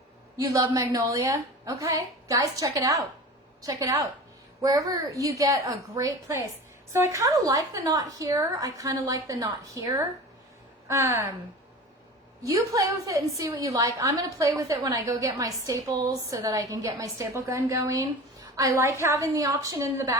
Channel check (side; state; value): both; normal; correlation 0.35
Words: You love magnolia? Okay, guys, check it out. Check it out. Wherever you get a great place. So I kind of like the knot here. I kind of like the knot here. You play with it and see what you like. I'm going to play with it when I go get my staples so that I can get my staple gun going. I like having the option in the